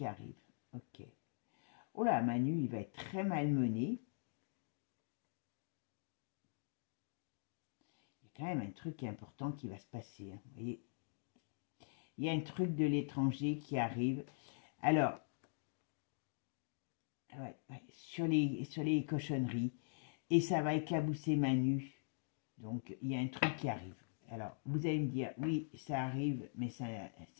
arrive. Ok. Oh là, Manu, il va être très malmené. Il y a quand même un truc qui est important qui va se passer. Hein. Vous voyez, il y a un truc de l'étranger qui arrive. Alors, sur les cochonneries. Et ça va éclabousser Manu. Donc, il y a un truc qui arrive. Alors, vous allez me dire, oui, ça arrive, mais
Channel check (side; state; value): right; silent; digital silence